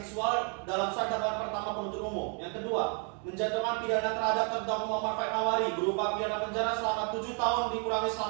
dalam surat dakwaan pertama penuntut umum. Yang kedua, menjatuhkan pidana terhadap terdakwa Muhammad Faik Hawari berupa pidana penjara selama 7 tahun dikurangi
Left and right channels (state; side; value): quieter; left; 38.9 dB